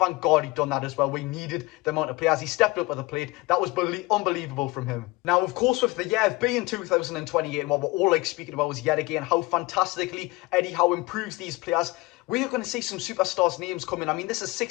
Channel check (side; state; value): right; quieter; 22.5 dB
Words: God he'd done that as well. We needed the amount of players. He stepped up with the plate. That was unbelievable from him. Now, of course, with the year being 2028, and what we're all speaking about is yet again how fantastically Eddie Howe improves these players. We are going to see some superstars' names coming. I mean, this is